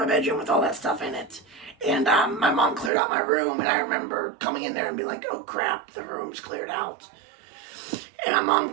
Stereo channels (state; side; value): drops out; left; at 2.9 s